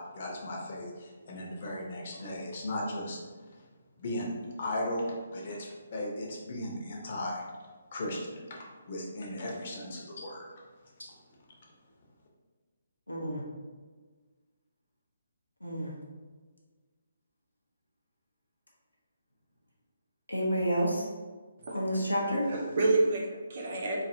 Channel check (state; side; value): inverted; both; correlation -0.78